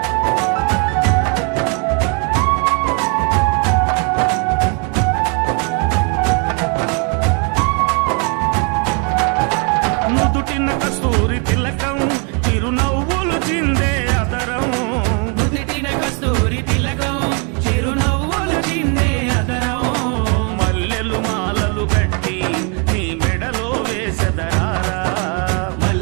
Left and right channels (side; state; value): left; quieter; 36.3 dB